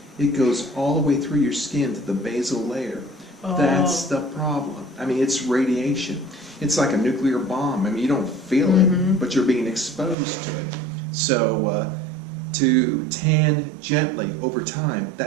It goes all the way through your skin to the basal layer. Oh. That's the problem. I mean, it's radiation. It's like a nuclear bomb. I mean, you don't feel it, but you're being exposed to it. So, to tan gently over time,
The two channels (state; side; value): drops out; left; at 10.2 s